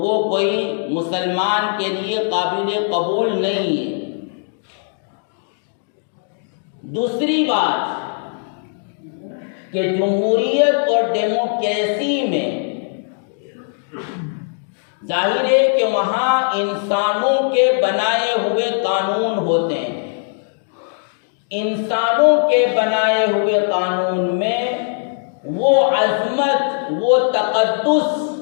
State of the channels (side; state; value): right; silent; digital silence